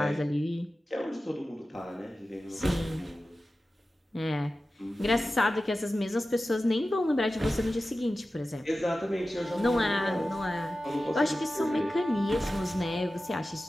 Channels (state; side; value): normal; both; correlation 0.94